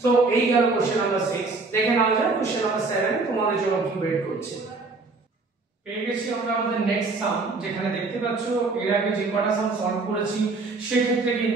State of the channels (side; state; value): left; quieter; 3.7 dB